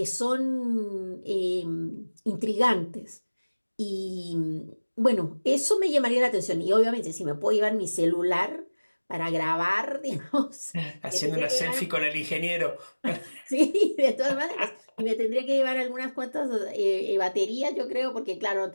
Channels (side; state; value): both; inverted; correlation -1.00